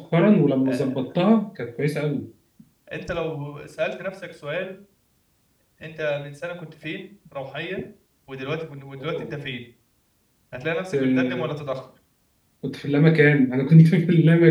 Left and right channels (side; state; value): both; identical; correlation 1.00